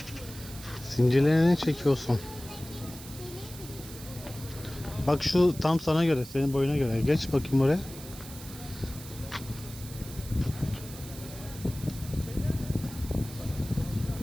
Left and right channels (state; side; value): noise; right; hiss, 15 dB below the sound